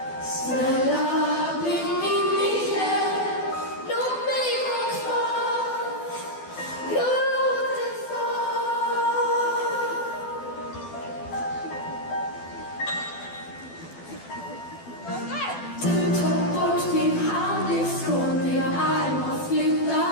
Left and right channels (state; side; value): late; right; 12 ms